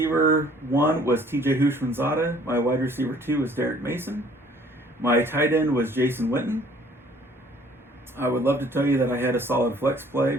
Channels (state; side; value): normal; both; correlation 0.56